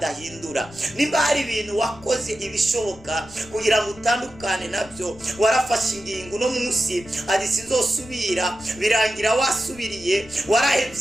Nimba hari ibintu wakoze ibishoboka kugira ngo utandukane nabyo, warafashe ingingo no munsi ati sinzosubira, birangira wasubiriye.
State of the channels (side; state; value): left; noise; rumble, 21 dB below the sound